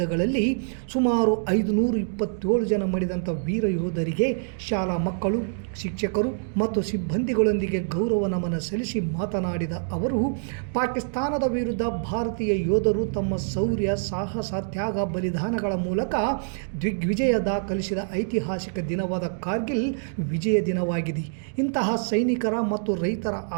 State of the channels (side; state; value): left; silent; digital silence